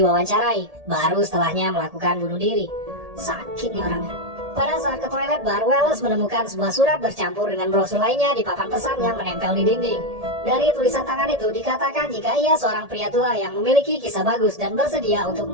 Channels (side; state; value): left; late; 1.7 ms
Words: baru setelahnya melakukan bunuh diri. Sakit nih orangnya. Pada saat ke toilet bar, Wallace menemukan sebuah surat bercampur dengan brosur lainnya di papan pesan yang menempel di dinding. Dari tulisan tangan itu dikatakan jika ia seorang pria tua yang memiliki kisah bagus dan bersedia untuk